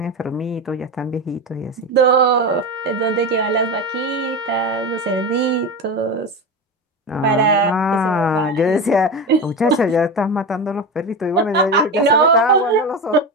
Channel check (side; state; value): both; normal; correlation 0.22